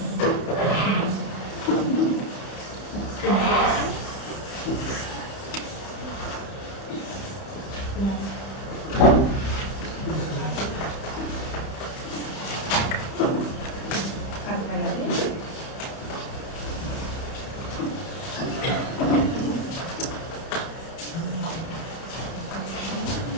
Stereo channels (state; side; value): late; right; 31 ms